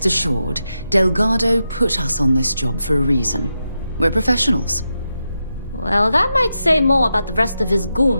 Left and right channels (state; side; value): inverted; both; correlation -0.88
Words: assured, Delgado put us on this job for a reason. We're professionals. Well, that might say more about the rest of his